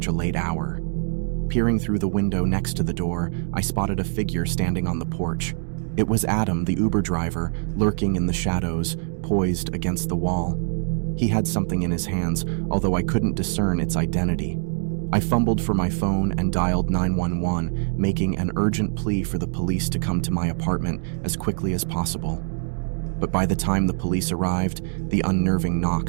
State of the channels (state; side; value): silent; left; digital silence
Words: a late hour. Peering through the window next to the door, I spotted a figure standing on the porch. It was Adam, the Uber driver, lurking in the shadows, poised against the wall. He had something in his hands, although I couldn't discern its identity. I fumbled for my phone and dialed 911, making an urgent plea for the police to come to my apartment as quickly as possible. but by the time the police arrived, the unnerving